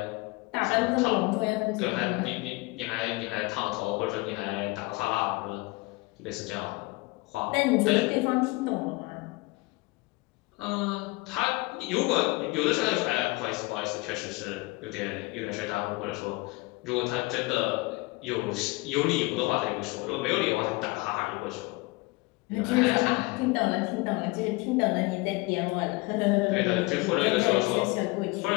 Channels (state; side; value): quieter; right; 24.0 dB